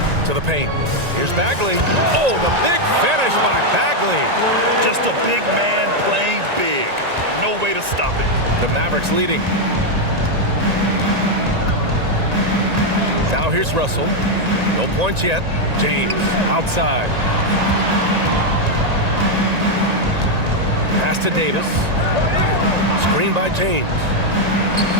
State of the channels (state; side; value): late; left; 1.9 ms